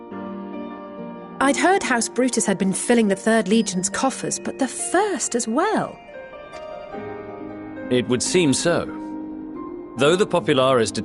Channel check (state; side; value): identical; both; correlation 1.00